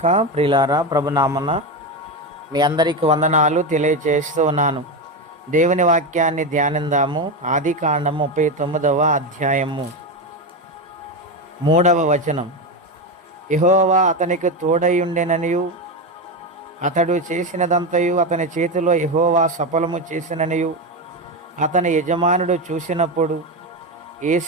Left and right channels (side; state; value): both; normal; correlation 0.14